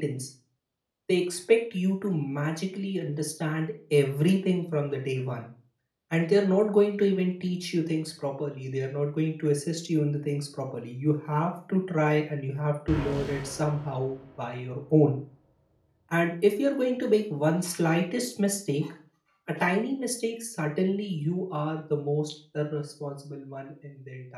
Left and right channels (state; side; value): identical; both; correlation 1.00